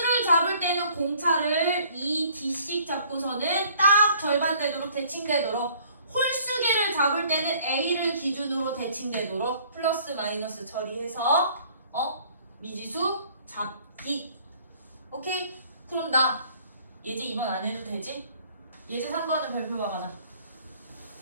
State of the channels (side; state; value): both; inverted; correlation -0.56